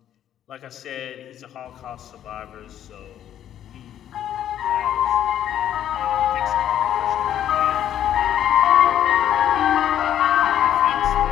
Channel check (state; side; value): quieter; right; 10.8 dB